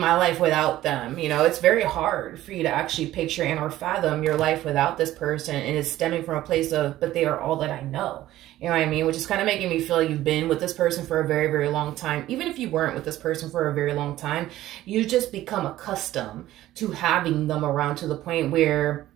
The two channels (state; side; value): quieter; left; 14.7 dB